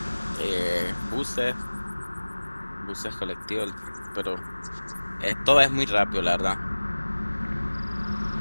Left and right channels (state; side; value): inverted; both; correlation -1.00